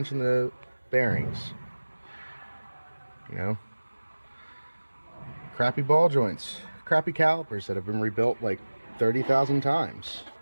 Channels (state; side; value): inverted; both; correlation -1.00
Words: the bearings. Crappy ball joints, crappy calipers that have been rebuilt like 30,000 times.